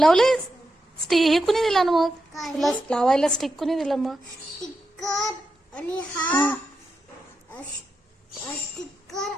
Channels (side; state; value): both; normal; correlation 0.87